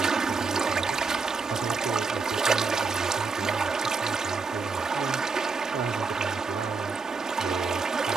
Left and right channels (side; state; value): left; quieter; 4.6 dB